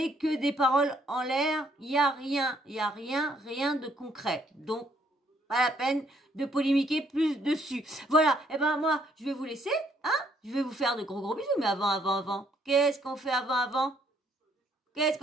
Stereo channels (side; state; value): both; normal; correlation 0.68